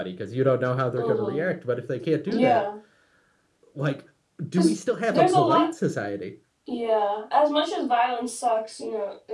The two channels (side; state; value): both; identical; correlation 1.00